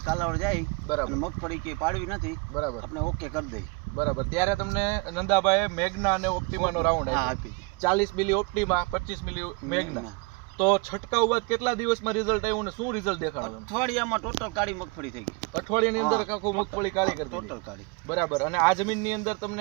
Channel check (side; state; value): left; quieter; 29.6 dB